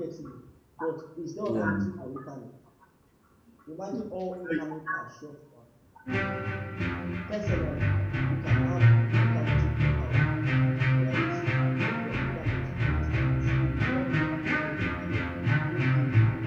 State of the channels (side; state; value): both; identical; correlation 1.00